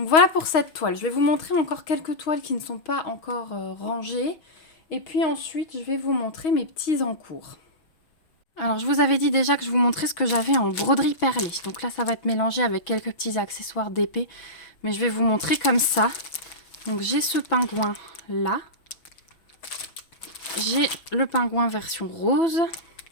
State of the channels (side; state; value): right; late; 6.1 ms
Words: voilà pour cette toile. Je vais vous montrer encore quelques toiles qui ne sont pas encore rangées. Et puis ensuite, je vais vous montrer mes petits en cours. Alors, je vous avais dit déjà que je vous montrais ce que j'avais en broderie perlée. Donc là, ça va être mélangé avec quelques petits accessoires d'épée. Mais je vais vous montrer comme ça. Donc, j'ai ce pingouin là. J'ai le pingouin version rose.